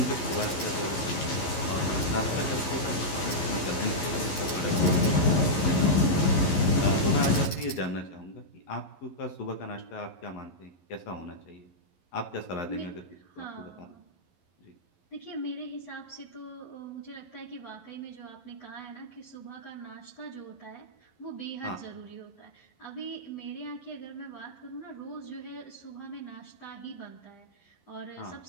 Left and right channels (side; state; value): right; late; 11 ms